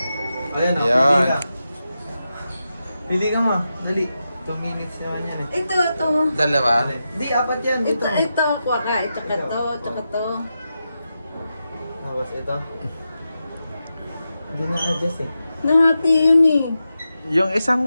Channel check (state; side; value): inverted; both; correlation -0.89